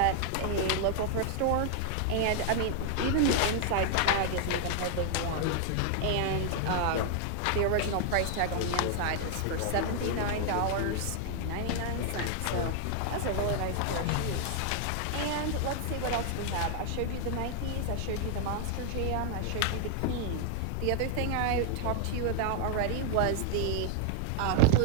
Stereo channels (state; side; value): different; both; correlation 0.00